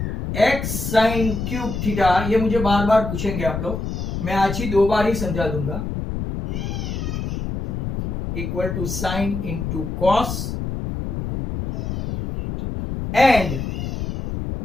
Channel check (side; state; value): left; noise; rumble, 4 dB below the sound